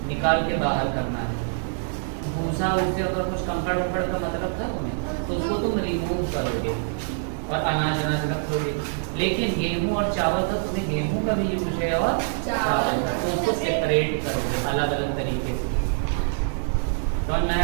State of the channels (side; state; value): left; silent; 62 dB below the other